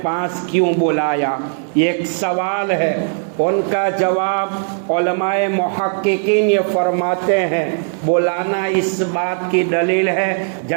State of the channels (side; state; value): left; silent; digital silence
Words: پاس کیوں بلایا؟ یہ ایک سوال ہے۔ ان کا جواب علماء محققین یہ فرماتے ہیں، بلانا اس بات کی دلیل ہے